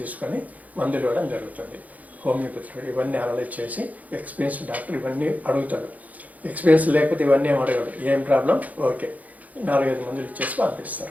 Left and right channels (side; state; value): left; late; 0.076 ms